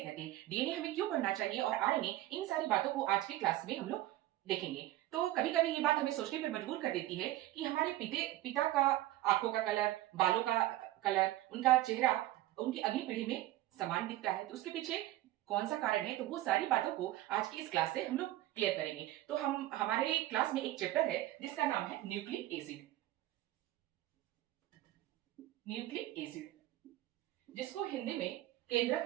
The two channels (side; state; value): left; quieter; 15.6 dB